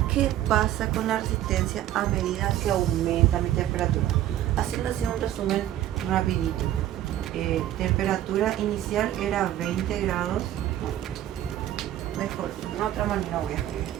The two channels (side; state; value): left; quieter; 12.7 dB